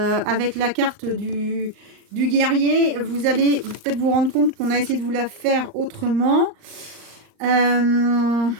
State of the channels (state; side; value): late; left; 38 ms